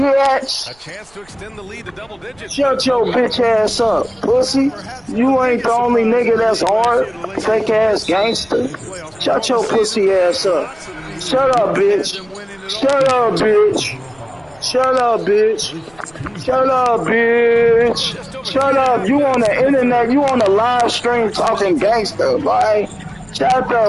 A chance to extend the lead to double digits. Shut your bitch ass up, pussy. You ain't the only nigga that's hard. Fake ass gangster. Shut your pussy ass up. Shut up, bitch. Shut up, bitch. Shut up, bitch. Shut up, bitch. Shut up. You on the internet. You on the live stream talking gangster, boy. Shut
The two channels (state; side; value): noise; right; rumble, 30 dB below the sound